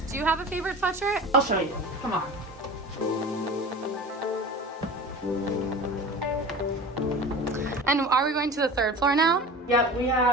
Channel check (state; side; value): normal; both; correlation 0.34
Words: Do you have a favorite sweatshirt? I'll show you. Come on. And are we going to the 3rd floor now? Yep, we